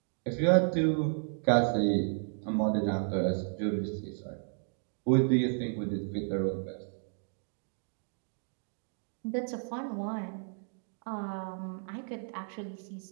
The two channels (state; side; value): silent; left; 56 dB below the other